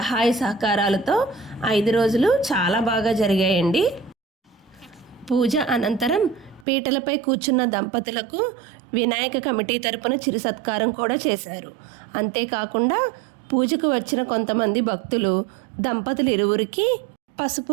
సహకారాలతో 5 రోజులు చాలా బాగా జరిగాయండి. పూజ అనంతరం పీటలపై కూర్చున్న దంపతులకు వినాయక కమిటీ తరపున చిరు సత్కారం కూడా చేశారు. అంతేకాకుండా పూజకు వచ్చిన కొంతమంది భక్తులు దంపతులు ఇరువురికి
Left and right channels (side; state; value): left; drops out; at 6.7 s